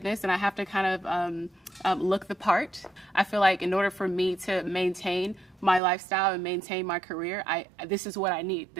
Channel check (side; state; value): left; drops out; at 5.8 s